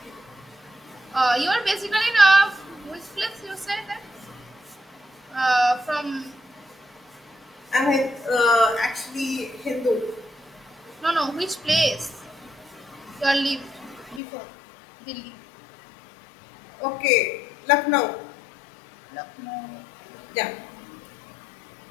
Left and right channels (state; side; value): drops out; right; at 14.2 s